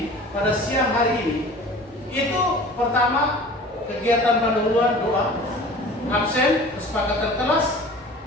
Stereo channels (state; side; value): normal; both; correlation 0.42